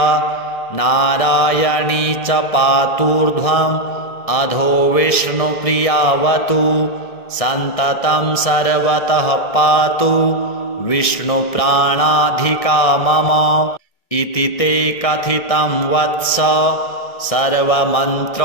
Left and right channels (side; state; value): right; late; 1.7 ms